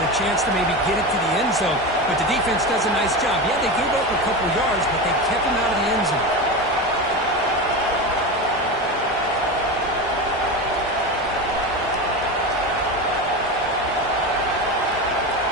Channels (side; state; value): both; normal; correlation 0.22